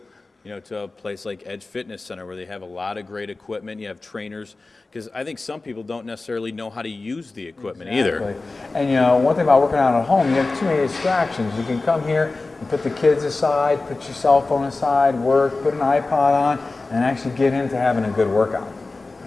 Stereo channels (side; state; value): right; quieter; 3.5 dB